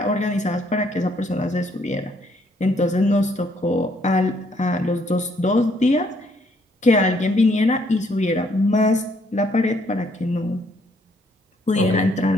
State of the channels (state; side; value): normal; both; correlation 0.68